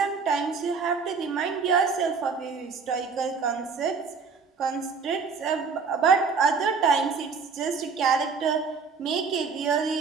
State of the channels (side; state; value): left; quieter; 5.3 dB